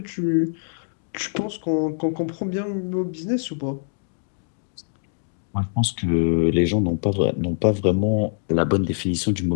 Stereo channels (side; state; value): right; silent; digital silence